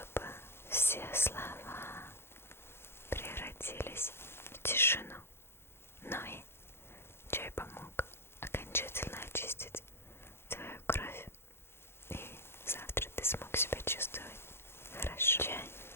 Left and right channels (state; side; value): late; right; 0.12 ms